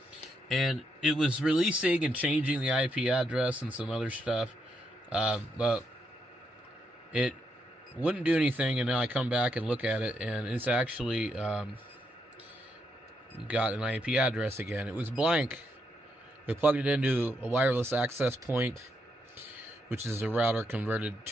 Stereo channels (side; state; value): both; normal; correlation 0.79